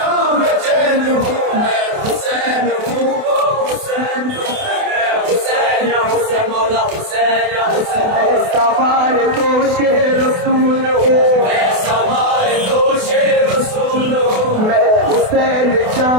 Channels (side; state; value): left; late; 28 ms